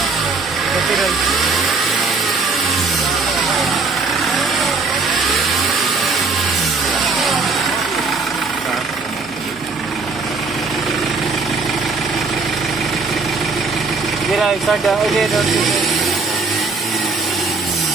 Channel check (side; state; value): left; quieter; 4.2 dB